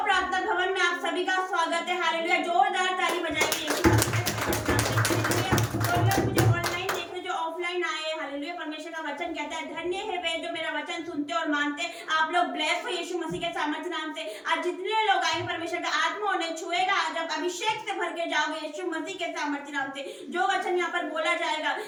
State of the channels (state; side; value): identical; both; correlation 1.00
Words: प्रार्थना भवन में आप सभी का स्वागत है। हालेलुया। जोरदार ताली बजाएंगे। तो लोग मुझे ऑनलाइन देख रहे, जो ऑफलाइन आए, हालेलुया। परमेश्वर का वचन कहता है, धन्य है वे जो मेरा वचन सुनते और मानते। आप लोग ब्लेस हो यीशु मसीह के सामर्थ्य नाम से। आज जितने लोग आएंगे, परमेश्वर का आत्मा उन्हें छुएगा। आज आप अभिषेक से भर के जाओगे यीशु मसीह के सामर्थ्य नाम से। जो वचन यहाँ पर बोला जाएगा,